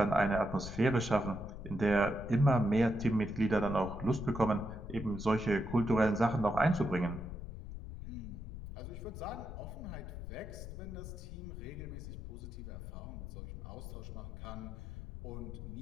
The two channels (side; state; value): left; noise; rumble, 9 dB below the sound